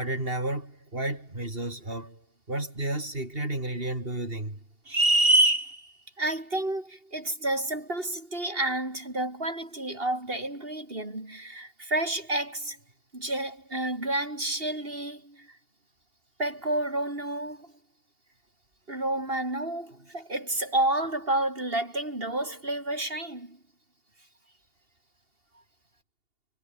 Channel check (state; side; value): late; left; 2.8 ms